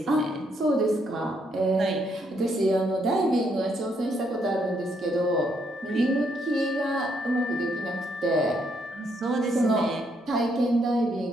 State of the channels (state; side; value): normal; both; correlation 0.74